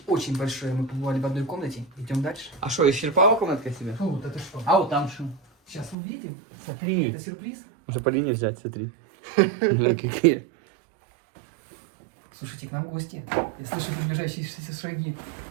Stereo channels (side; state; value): left; drops out; at 6.0 s